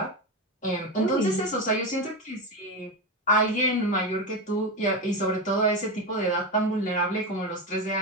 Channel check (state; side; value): normal; both; correlation 0.16